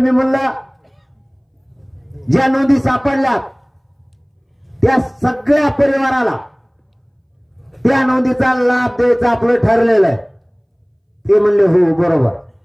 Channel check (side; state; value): both; identical; correlation 1.00